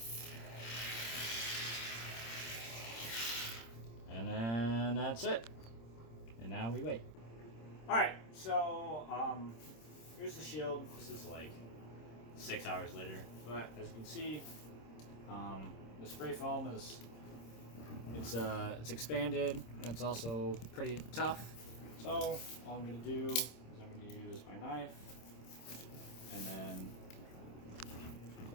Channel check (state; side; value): late; right; 26 ms